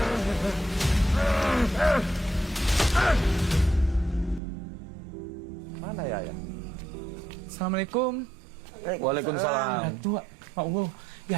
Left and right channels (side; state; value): left; drops out; at 4.4 s